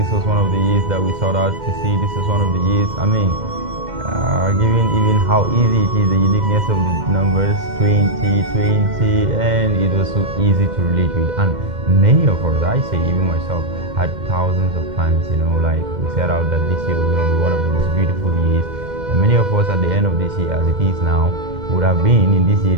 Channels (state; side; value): late; left; 2.1 ms